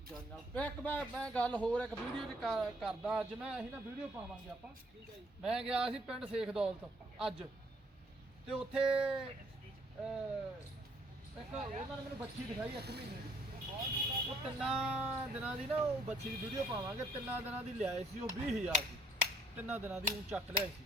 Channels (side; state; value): both; normal; correlation 0.65